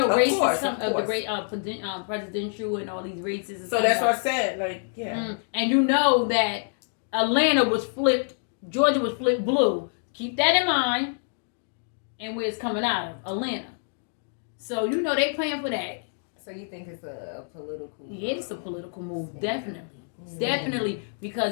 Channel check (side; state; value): right; silent; digital silence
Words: Of races, course, some of of the course. great presidential and all these races. And so stuff that's like what I said. Like, yeah. And you know that Atlanta was flipped, Georgia was flipped blue. Keep that in mind. And where it's coming out of, Atlanta. So you know they playing for that. So you think it's a political? Yeah, it's a political move, definitely. Definitely,